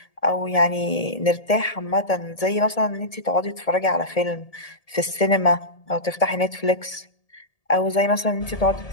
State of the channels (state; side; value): late; right; 1.7 ms